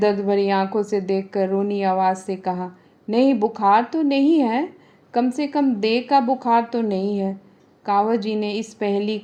भरी आंखों से देखकर रोनी आवाज़ से कहा, नहीं, बुखार तो नहीं है, कम से कम देह का बुखार तो नहीं है। कावस जी ने इस पहेली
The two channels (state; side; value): identical; both; correlation 1.00